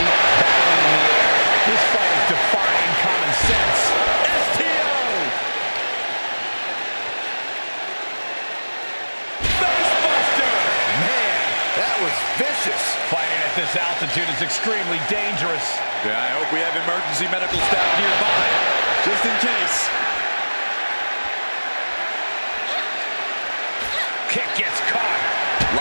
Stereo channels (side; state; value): both; inverted; correlation -1.00